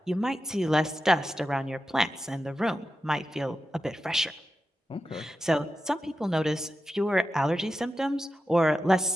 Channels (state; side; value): normal; both; correlation 0.90